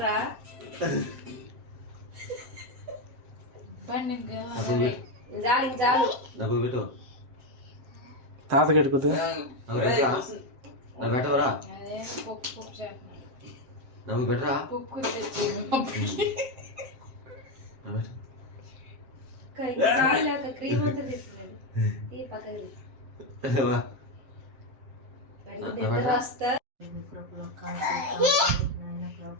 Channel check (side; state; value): left; late; 7.6 ms